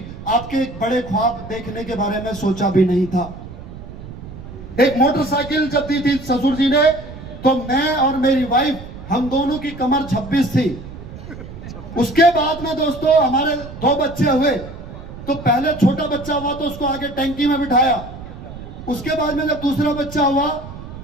आपके बड़े ख्वाब देखने के बारे में सोचा भी नहीं था। एक मोटरसाइकिल जब दी थी ससुर जी ने, तो मैं और मेरी वाइफ, हम दोनों की कमर 26 थी। उसके बाद में दोस्तों हमारे 2 बच्चे हुए, तो पहले छोटा बच्चा हुआ तो उसको आगे टैंकी में बिठाया, उसके बाद में जब दूसरा बच्चा हुआ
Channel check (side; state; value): right; noise; rumble, 13 dB below the sound